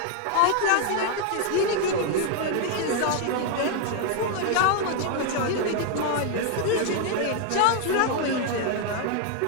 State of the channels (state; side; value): different; both; correlation 0.00